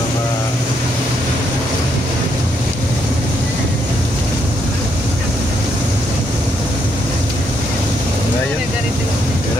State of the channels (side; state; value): both; normal; correlation 0.75